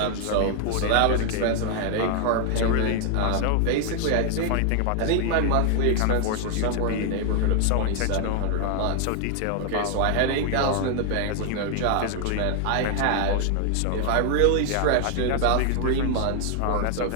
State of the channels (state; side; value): different; both; correlation 0.00